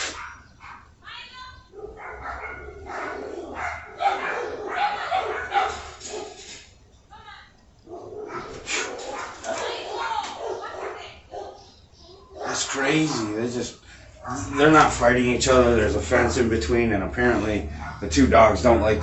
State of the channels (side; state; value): both; identical; correlation 1.00